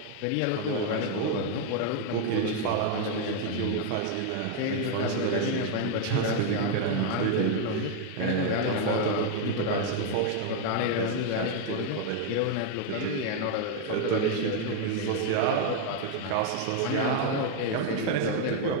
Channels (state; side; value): different; both; correlation 0.00